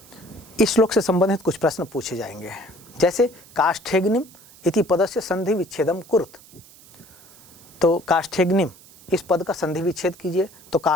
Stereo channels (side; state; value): right; noise; hiss, 23 dB below the sound